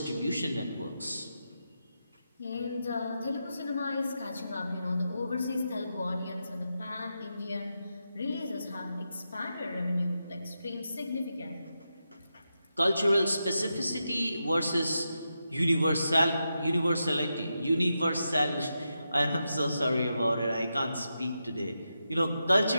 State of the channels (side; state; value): both; inverted; correlation -0.87